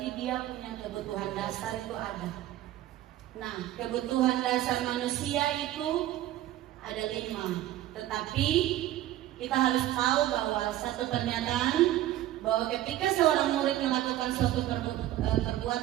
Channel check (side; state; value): left; quieter; 13.9 dB